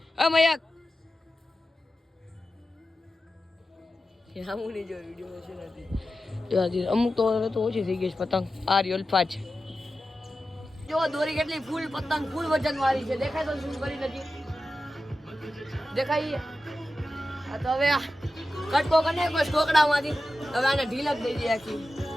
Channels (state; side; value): normal; both; correlation 0.92